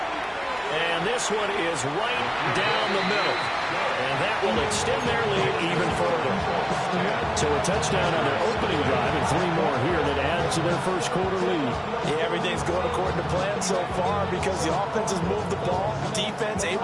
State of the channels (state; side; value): identical; both; correlation 1.00